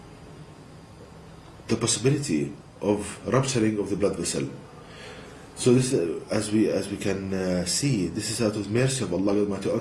possibility of rupturing of the blood vessel. So this, as we can see, this is out of mercy of Allah Almighty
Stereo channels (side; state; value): both; identical; correlation 1.00